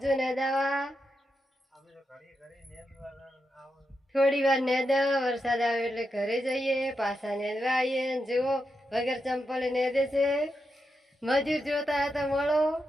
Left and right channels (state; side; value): normal; both; correlation 0.86